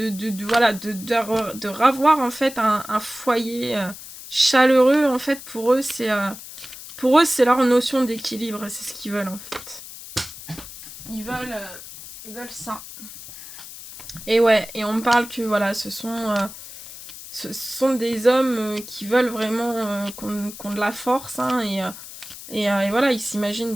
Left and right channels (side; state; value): left; noise; hiss, 14 dB below the sound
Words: voilà, de ravoir, en fait, un foyer chaleureux, en fait, pour eux, c'est leur notion d'équilibre, c'est ce qu'ils veulent, en fait. Ils veulent ça. Et ouais, et on me parle que, voilà, ce sont des hommes qui veulent vraiment qu'on de la force, hein, et voilà, ils s'imaginent